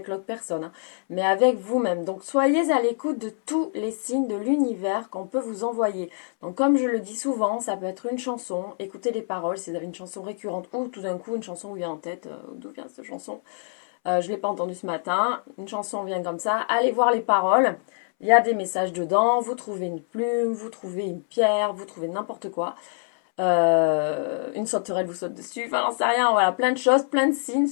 l'autre personne, hein, mais avec vous-même. Donc soyez à l'écoute de tous les signes de l'univers qu'on peut vous envoyer. Donc comme je le dis souvent, ça peut être une chanson, écoutez les paroles si vous avez une chanson récurrente ou tout d'un coup une chanson vous vient en tête, d'où vient cette chanson, je ne l'ai pas entendue ce matin, une chanson vient comme ça, allez voir les paroles. Il y a des messages dedans, vous trouvez une plume, vous trouvez une pierre, vous trouvez n'importe quoi. Une sauterelle vous saute dessus, enfin j'en sais rien, voilà, plein de choses, plein de signes,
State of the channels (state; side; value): silent; right; 62 dB below the other